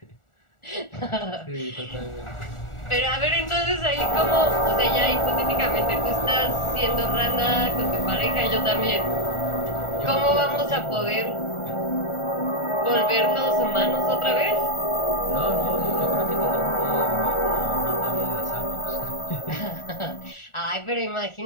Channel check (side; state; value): right; late; 1.4 ms